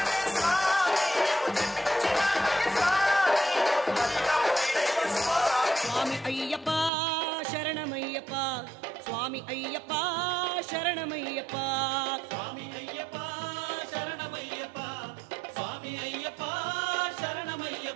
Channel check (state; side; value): drops out; left; at 6.9 s